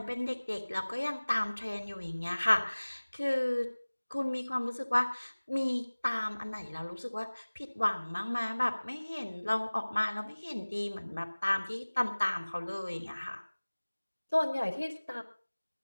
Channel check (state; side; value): inverted; both; correlation -1.00